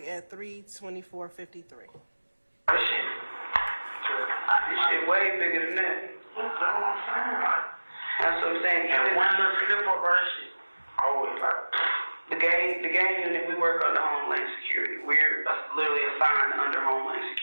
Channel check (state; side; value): inverted; both; correlation -1.00